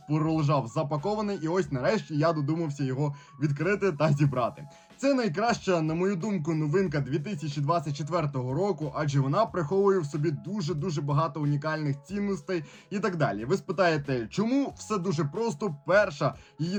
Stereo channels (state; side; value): identical; both; correlation 1.00